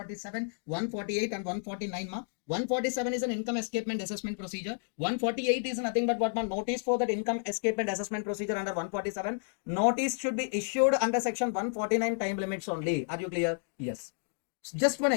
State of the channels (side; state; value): right; silent; digital silence